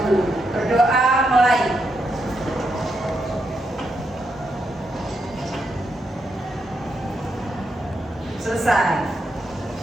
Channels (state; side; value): normal; both; correlation 0.82